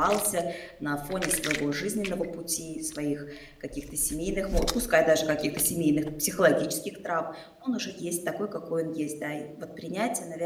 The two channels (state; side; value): identical; both; correlation 1.00